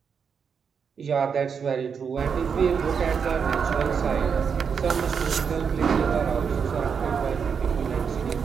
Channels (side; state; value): left; quieter; 6.5 dB